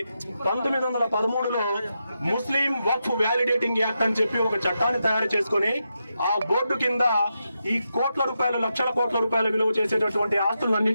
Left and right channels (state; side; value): inverted; both; correlation -0.86